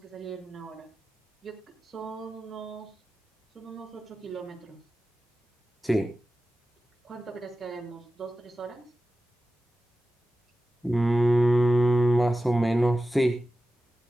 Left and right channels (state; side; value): normal; both; correlation 0.94